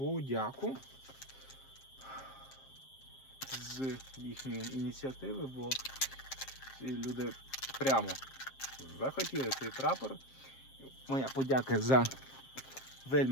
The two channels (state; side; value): late; right; 7.5 ms